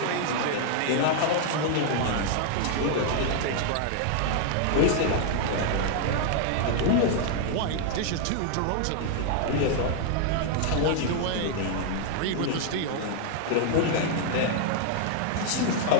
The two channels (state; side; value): different; both; correlation 0.00